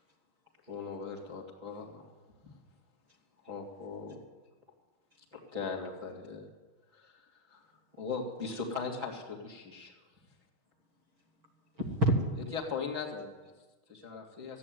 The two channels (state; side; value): late; left; 6.1 ms